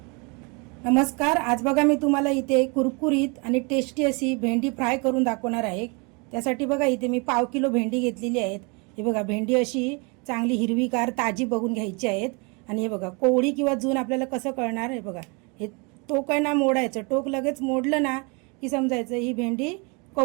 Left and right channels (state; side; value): quieter; left; 31.1 dB